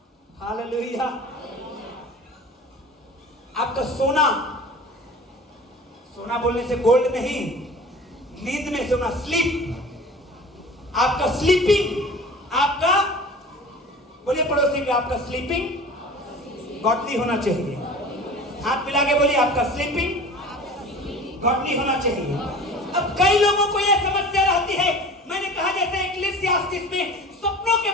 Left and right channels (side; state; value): both; normal; correlation 0.40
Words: हालेलुया। आपका सोना, सोना बोलने से गोल्ड नहीं, नींद में सोना, स्लीप, आपका स्लीपिंग, आपका, बोलिए पड़ोसी के, आपका स्लीपिंग गॉडली होना चाहिए। हाथ मिला के बोलिए आपका स्लीपिंग गॉडली होना चाहिए। अब कई लोगों को यह समस्या रहती है, मैंने कहा जैसे इक्लेसियास्टिस में सपनों के